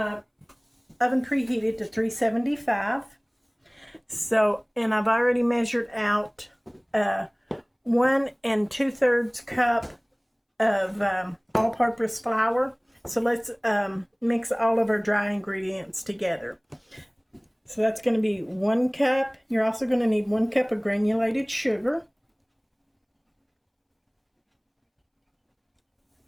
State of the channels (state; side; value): identical; both; correlation 1.00